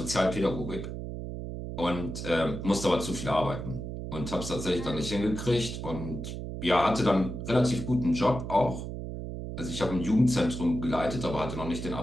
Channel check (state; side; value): noise; right; hum, 7 dB below the sound